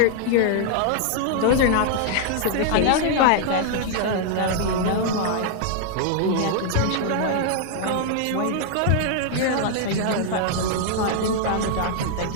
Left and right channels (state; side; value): different; both; correlation 0.00